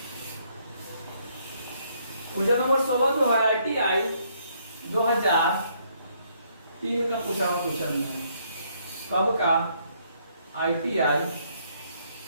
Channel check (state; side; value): inverted; both; correlation -0.69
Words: Question number 16 जो है ITI 2003 का पूछा हुआ क्वेश्चन है। कब का, ITI